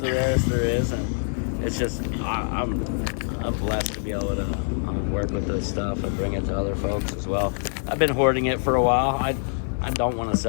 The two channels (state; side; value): silent; right; digital silence